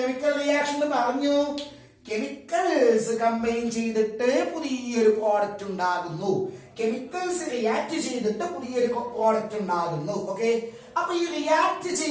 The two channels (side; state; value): both; identical; correlation 1.00